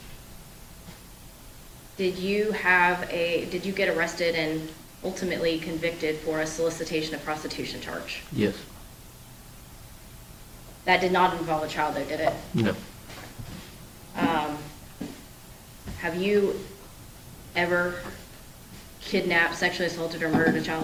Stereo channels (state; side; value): identical; both; correlation 1.00